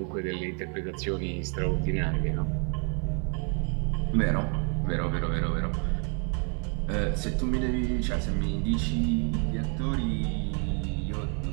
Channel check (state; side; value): quieter; left; 38.8 dB